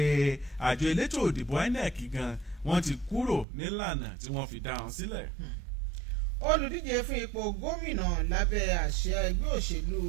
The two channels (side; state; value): left; drops out; at 3.5 s